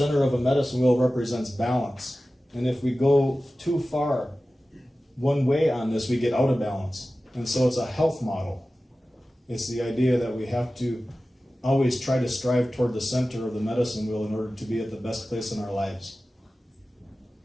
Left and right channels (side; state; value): both; normal; correlation 0.95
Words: of a medicine wheel represents balance. And if we go too far one way on this, we get out of balance. And so it's a health model. It's the idea that we have to always try to strive toward the center of the medicine wheel in order to be at the best place in our lives.